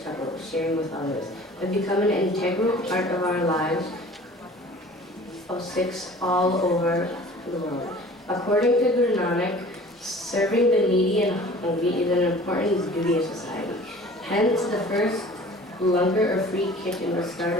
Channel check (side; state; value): both; normal; correlation 0.46